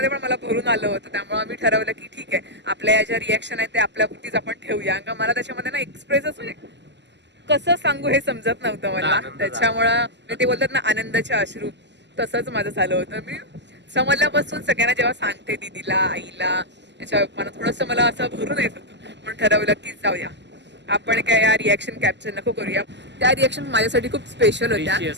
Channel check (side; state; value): left; late; 0.51 ms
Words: पण मला भरून आलं होतं. त्यामुळे आम्ही ठरवलं की ठीक आहे, आपल्या या ज्या रिॲक्शन आहेत ते आपल्यापुरतीच आपण ठेवूया. कारण मला त्याच्यामध्ये ना एक्सप्रेसच म्हणजे कसं सांगू हे समजत नव्हतं मला. त्याच्यामुळं ते बोलतात ना आनंदाचे अश्रू, तसंच माझं झालं होतं. मी समजल्यापासून सगळ्यांना जेव्हा सांगते दीदीला, आईला, याच्या मला थोडंसं मला असं भरून येत होतं. म्हणून ठरवलं की जाऊया, आपण काय या रिॲक्शन कॅप्चर नको करूया. त्या रिॲक्शन माझ्यासाठी खूप स्पेशल होत्या,